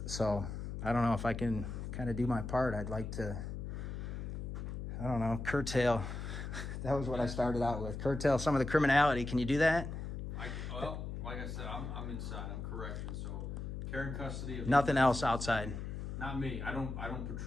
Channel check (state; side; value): noise; left; hum, 6 dB below the sound